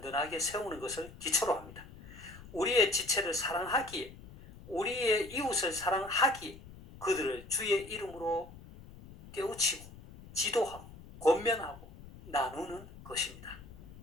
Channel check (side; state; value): left; noise; rumble, 18 dB below the sound